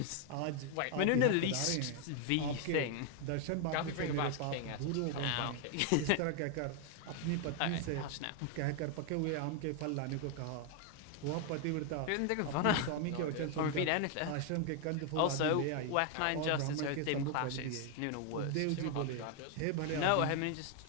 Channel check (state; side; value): different; both; correlation 0.01